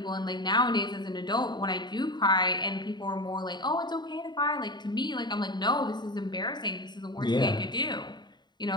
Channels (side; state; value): right; late; 0.21 ms